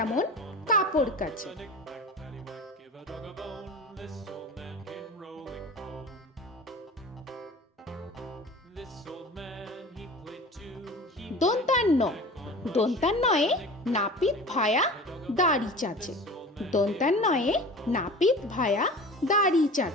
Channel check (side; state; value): both; normal; correlation 0.37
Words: কাপড় কাচে। Knick-knack, paddywhack, give a dog a bone. This old man came rolling home. This old man, he played two. He দন্তান্ন, দন্তান্নয়ে নাপিত ভায়া দাড়ি চাচে। দন্তান্নয়ে নাপিত ভায়া দাড়ি